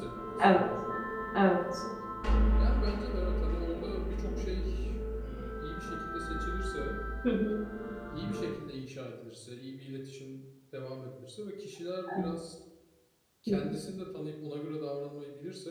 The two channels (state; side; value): identical; both; correlation 1.00